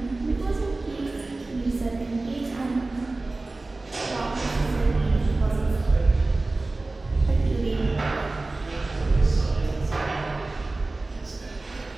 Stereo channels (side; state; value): left; quieter; 3.2 dB